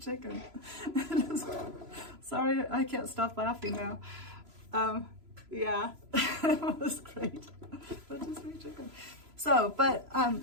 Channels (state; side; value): late; left; 3.0 ms